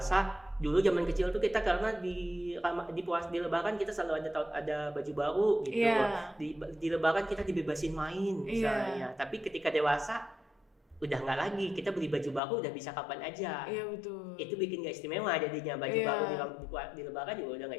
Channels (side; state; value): right; drops out; at 12.4 s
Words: dulu zaman kecil tuh kita karena di Lebaran kita selalu ada baju baru gitu. Yeah. Di Lebaran kita dibebasin main misalnya. Tapi ketika dewasa udah nggak lagi, kita beli baju baru udah bisa kapan aja. Iya betul. Itu bikin nggak istimewa jadinya, baju baru di Lebaran juga udah